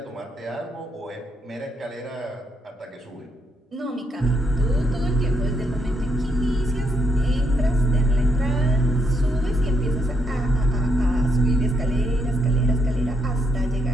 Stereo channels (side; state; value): both; normal; correlation 0.76